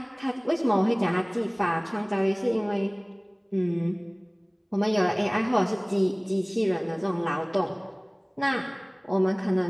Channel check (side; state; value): both; identical; correlation 1.00